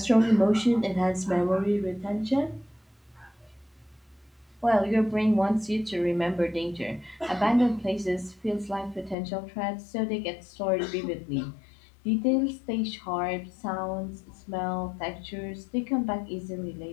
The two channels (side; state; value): right; drops out; at 9.2 s